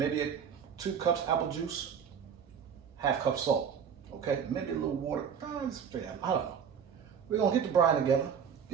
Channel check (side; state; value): left; quieter; 7.4 dB